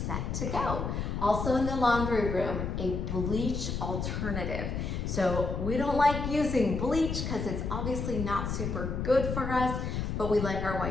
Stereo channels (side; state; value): left; noise; rumble, 3 dB below the sound